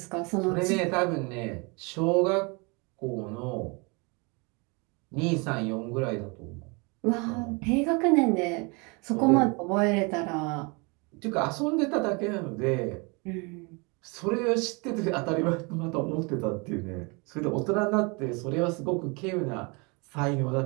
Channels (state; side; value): quieter; left; 30.1 dB